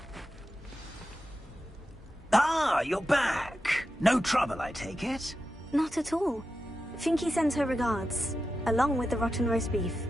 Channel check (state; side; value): normal; both; correlation 0.90